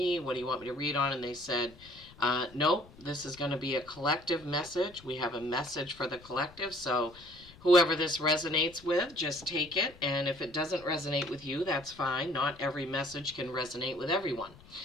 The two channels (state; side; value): noise; left; rumble, 22 dB below the sound